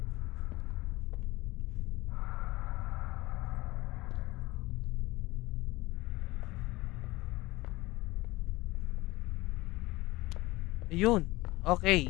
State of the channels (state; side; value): quieter; right; 20.3 dB